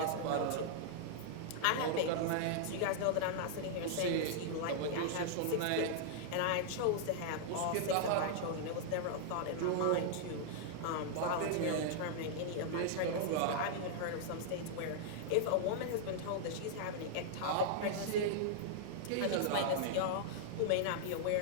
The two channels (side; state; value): both; different; correlation -0.01